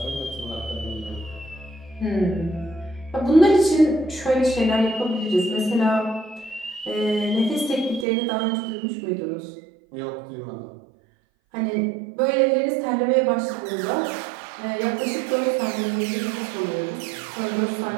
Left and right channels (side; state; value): left; drops out; at 8.1 s